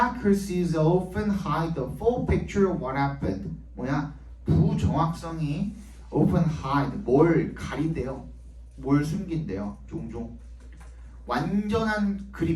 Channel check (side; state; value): both; identical; correlation 1.00